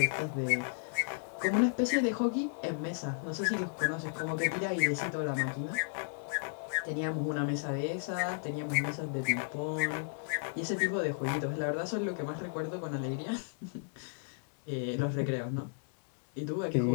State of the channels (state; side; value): silent; right; digital silence